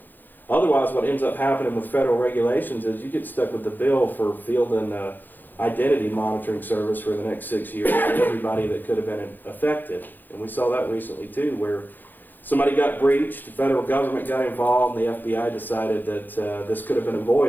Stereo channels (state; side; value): late; right; 0.088 ms